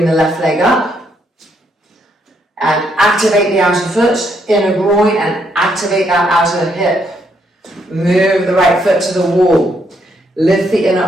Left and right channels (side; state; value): both; normal; correlation 0.74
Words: the left leg up. And activate the outer foot, inner groin, and activate that outer hip. Move the right foot to the wall. Lift the inner